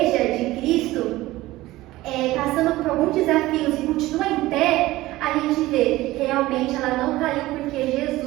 de Cristo passando por alguns desafios e continua em pé, a gente vê, realmente ela não caiu porque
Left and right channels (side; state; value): left; quieter; 17.7 dB